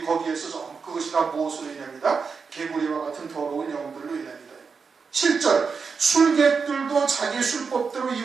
그것이 다 무엇으로 인합니다? 개구리와 같은 더러운 영들로 인합니다. 7절 술객들도 자기 술법대로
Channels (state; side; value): quieter; left; 5.4 dB